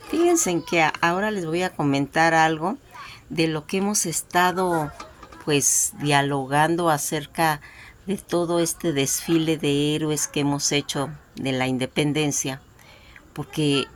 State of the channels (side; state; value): both; identical; correlation 1.00